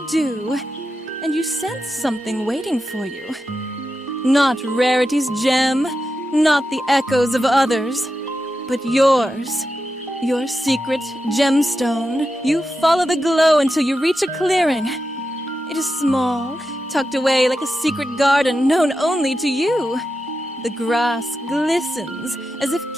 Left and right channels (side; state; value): both; normal; correlation 0.89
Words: dew, and you sense something waiting for you. Not Rarity's gem, not the echoes of others, but yours. Your secret gemstone. You follow the glow until you reach a clearing. It is small, tucked away like a secret garden known only to you. The grass glistens as if